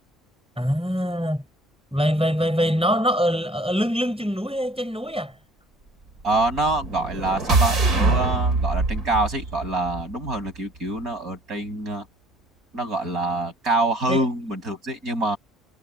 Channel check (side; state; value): both; normal; correlation 0.53